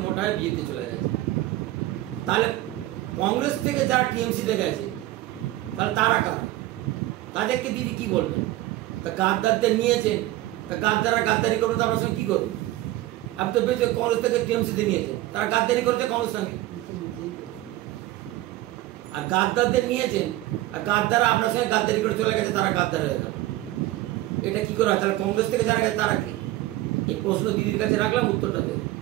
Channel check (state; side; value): quieter; left; 16.5 dB